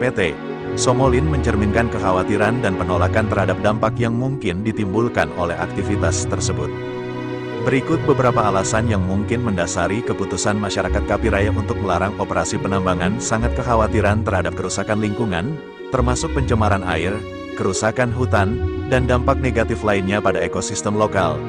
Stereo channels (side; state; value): both; identical; correlation 1.00